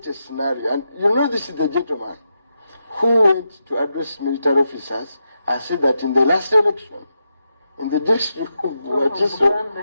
a scenario. And you know, this is the gentleman who went to address military officers and said that in the last election, in the district of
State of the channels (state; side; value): inverted; both; correlation -0.86